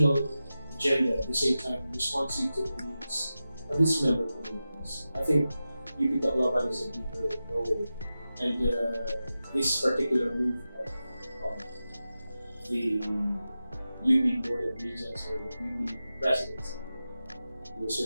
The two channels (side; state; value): both; inverted; correlation -0.93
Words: agenda, at the same time responsive to the needs of its member communities. I think UP Tacloban is a deeper role, and this particular move of the UP Board of Regents or the UP Presidency will